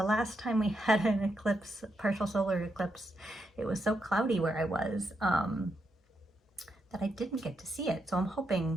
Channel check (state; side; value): normal; both; correlation 0.81